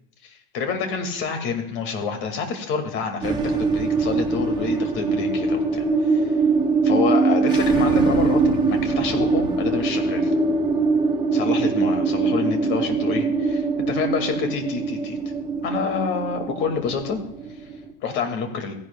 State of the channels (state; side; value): normal; both; correlation 0.55